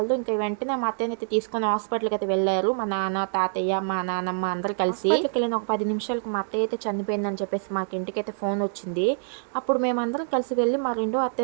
ఇంకా వెంటనే మా అత్తయ్యని అయితే తీసుకొని హాస్పిటల్కి అయితే వెళ్ళారు. మా నాన్న, తాతయ్య, మా నాన్నమ్మ అందరు కలిసి. వెళ్ళిన ఒక 10 నిమిషాలకు మా అత్తయ్య అయితే చనిపోయిందని చెప్పేసి మాకు ఇంటికి అయితే ఫోన్ వచ్చింది. అప్పుడు మేమందరం కలిసి వెళ్ళి మా రెండో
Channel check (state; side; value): silent; left; digital silence